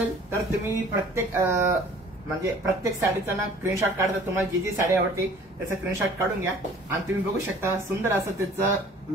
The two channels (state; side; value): normal; both; correlation 0.51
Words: तर तुम्ही प्रत्येक साडीचा ना स्क्रीनशॉट काढता. तुम्हाला जी साडी आवडते त्याचा स्क्रीनशॉट काढून घ्या आणि तुम्ही बघू शकता सुंदर असं त्याचं